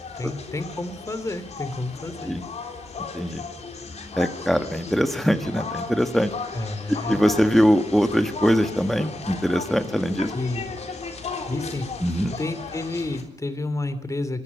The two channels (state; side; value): normal; both; correlation 0.90